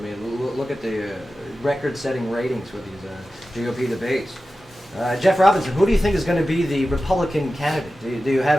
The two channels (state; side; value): normal; both; correlation 0.94